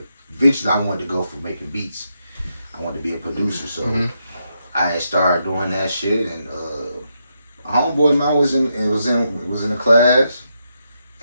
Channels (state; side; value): inverted; both; correlation -0.82